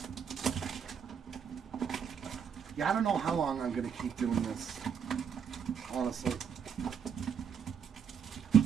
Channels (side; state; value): left; quieter; 7.4 dB